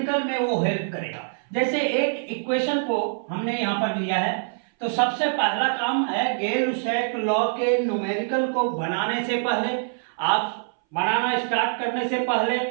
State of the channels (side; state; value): left; silent; 60 dB below the other